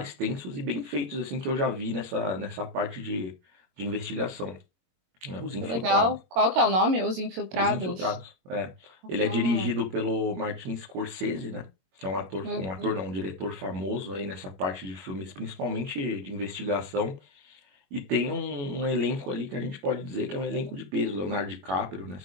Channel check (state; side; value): late; left; 22 ms